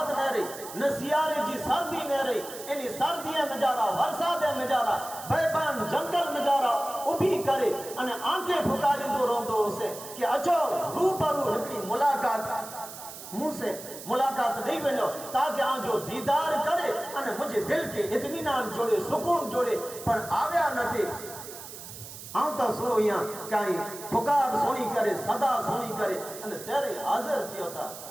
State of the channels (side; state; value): right; noise; hiss, 13 dB below the sound